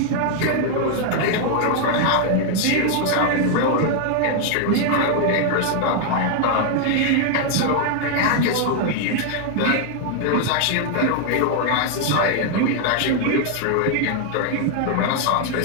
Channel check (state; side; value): different; both; correlation 0.00